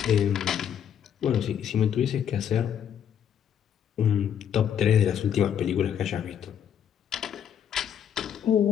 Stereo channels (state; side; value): quieter; right; 9.0 dB